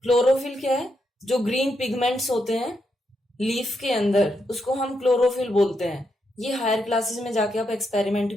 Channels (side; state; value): both; normal; correlation 0.81